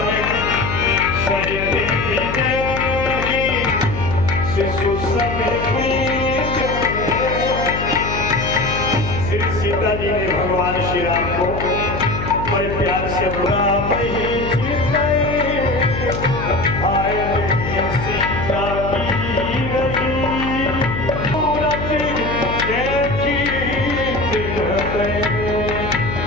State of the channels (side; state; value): left; noise; hum, 6 dB below the sound